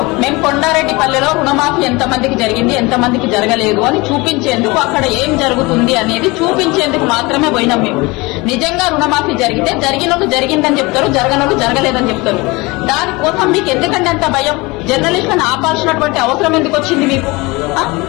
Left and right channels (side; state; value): right; quieter; 24.1 dB